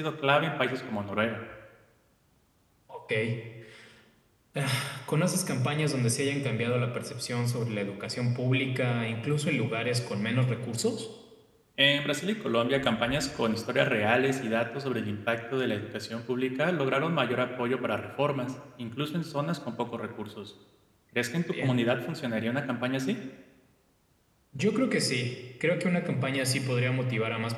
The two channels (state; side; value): identical; both; correlation 1.00